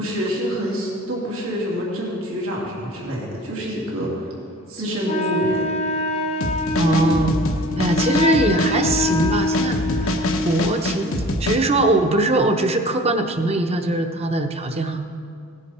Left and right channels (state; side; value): normal; both; correlation 0.44